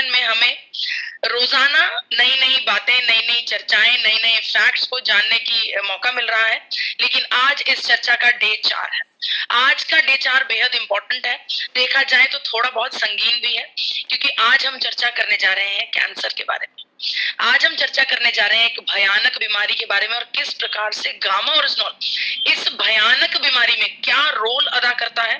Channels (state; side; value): identical; both; correlation 1.00